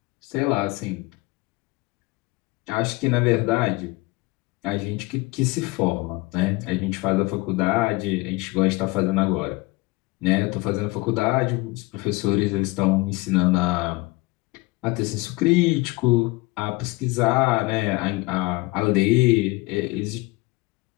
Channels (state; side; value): quieter; right; 23.0 dB